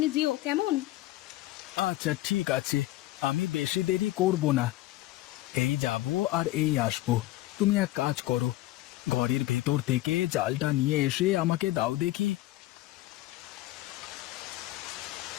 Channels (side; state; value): right; quieter; 16.9 dB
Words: যেও, কেমন? আচ্ছা ঠিক আছে, আমি বেশি দেরি করব না। এই যাব আর এই আসবো। তুমি এক কাজ করো, ঘরের ভেতর থেকে জালটা নিয়ে এসে আমাকে দাও দেখি।